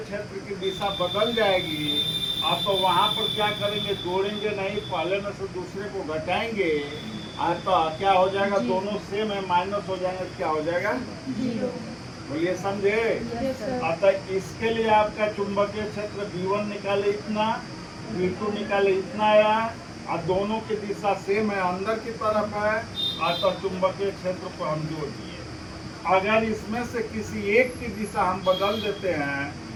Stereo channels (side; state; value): both; identical; correlation 1.00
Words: की दिशा बदल जाएगी। आप तो वहाँ पर क्या करेंगे? जोड़ेंगे नहीं, पहले में से दूसरे को घटाएंगे और तो क्या हो जाएगा? दोनों सेम है, माइनस हो जाएंगे, क्या हो जाएगा? 0। बोलिए समझे? अतः इसके लिए आपका चुंबकीय क्षेत्र B1 निकाले इतना, B2 निकाले इतना आया और दोनों की दिशा सेम है, अंदर की तरफ है। अतः चुंबकीय क्षेत्र को हम जोड़ दिए। अगर इसमें से किसी एक की दिशा हम बदल देते हैं